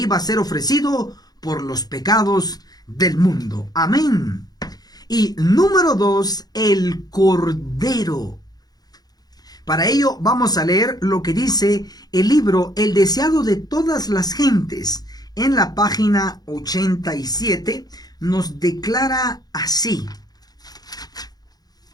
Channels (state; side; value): late; right; 0.19 ms